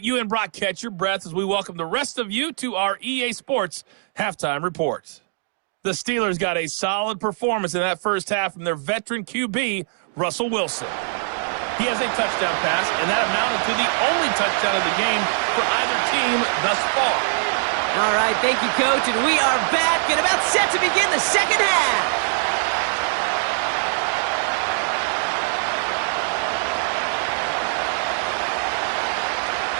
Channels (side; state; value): left; silent; digital silence